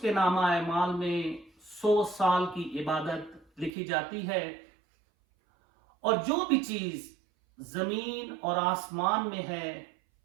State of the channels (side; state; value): left; drops out; at 3.7 s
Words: نامہ اعمال میں 100 سال کی عبادت لکھی جاتی ہے، اور جو بھی چیز زمین اور آسمان میں ہے